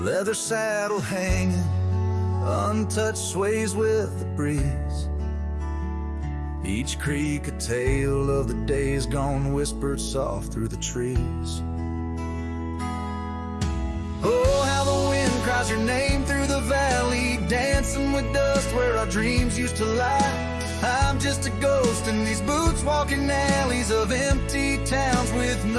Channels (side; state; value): both; identical; correlation 1.00